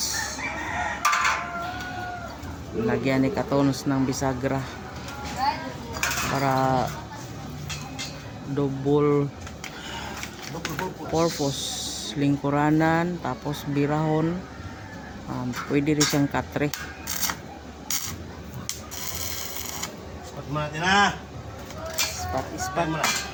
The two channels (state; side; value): identical; both; correlation 1.00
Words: Lagyan ni katons ng bisagra para double purpose. Lingkuranan tapos birahon. Pwede rin siyang katre. Ispat mo natin, ha? Ispat mo na.